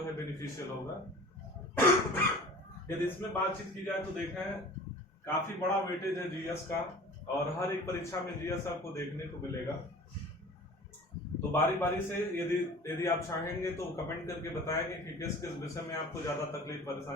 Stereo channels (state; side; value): normal; both; correlation 0.42